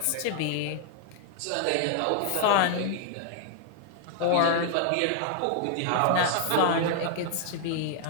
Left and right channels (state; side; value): different; both; correlation -0.01